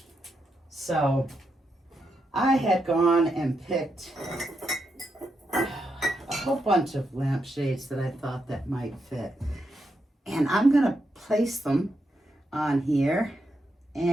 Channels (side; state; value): both; normal; correlation 0.83